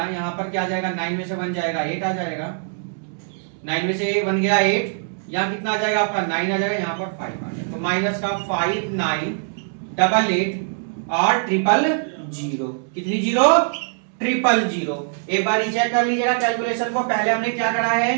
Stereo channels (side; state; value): left; silent; digital silence